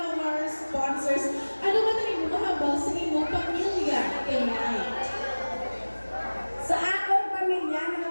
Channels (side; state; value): both; inverted; correlation -1.00